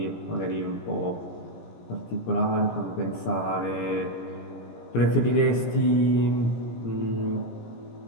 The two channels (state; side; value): late; right; 17 ms